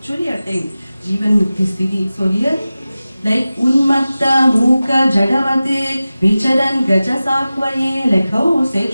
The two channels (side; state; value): both; inverted; correlation -0.96